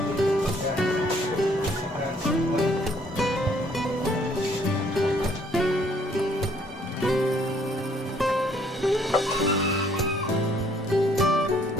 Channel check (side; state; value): both; normal; correlation 0.63